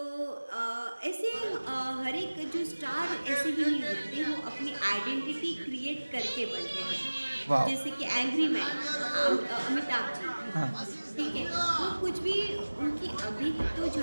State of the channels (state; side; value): inverted; both; correlation -1.00